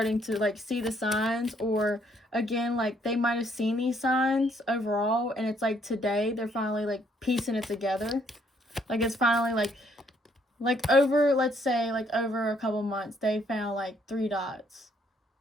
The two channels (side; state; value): both; normal; correlation 0.68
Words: to like see the signs, or again, like they might have seen these signs overall, and it's like today they're finally like piecing it together. Like it's finally like like over, let's say, like over a couple months, they found like 3 dots.